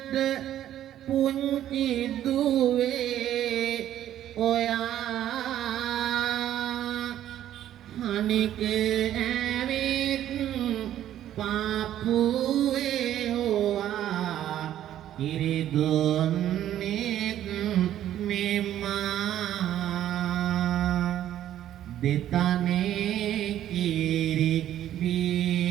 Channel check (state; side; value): quieter; left; 11.8 dB